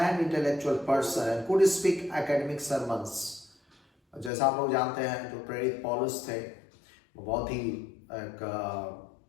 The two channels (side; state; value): right; drops out; at 4.3 s